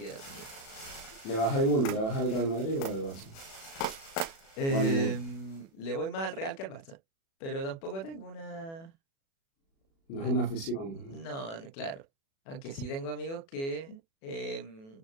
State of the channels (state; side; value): late; right; 36 ms